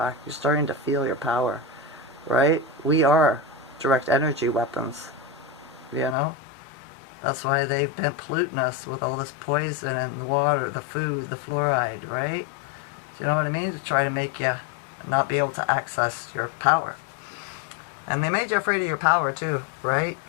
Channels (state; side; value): drops out; right; at 6.2 s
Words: You're starting to feel your power, right? We are direct energy weapons, you know? That's why they've been polluting us with all this poison in the water, the food, the fluoride, right? Do you know what I mean? To try to make you not be able to access your power. And they made you afraid of your power too, right?